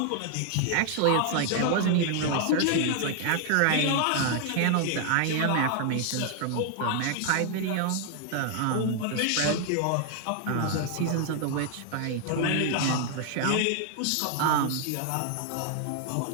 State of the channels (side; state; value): both; different; correlation 0.00